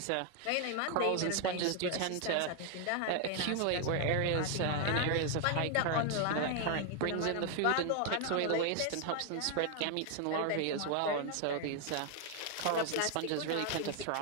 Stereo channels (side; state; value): both; different; correlation 0.00